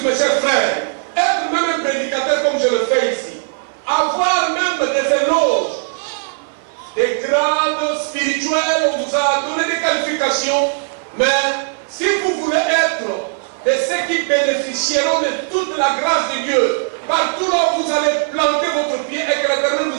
mes chers frères, être même un prédicateur comme je le fais ici, avoir même des éloges, des grades spirituels, on vous a donné des qualifications, mais si vous voulez être de ceux qui bénéficieront de toute la grâce de Dieu, partout là où vous allez planter votre pied et que l'Éternel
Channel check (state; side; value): silent; left; 58 dB below the other